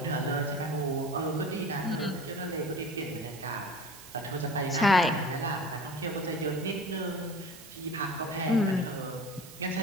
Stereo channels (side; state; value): right; noise; hiss, 17 dB below the sound